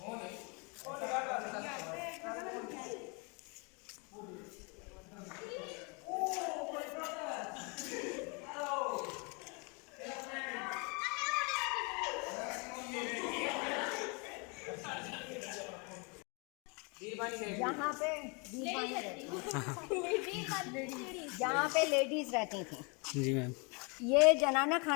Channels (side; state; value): right; quieter; 32.3 dB